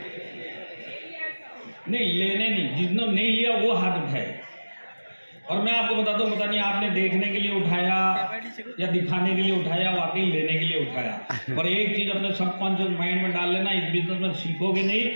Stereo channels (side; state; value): both; inverted; correlation -1.00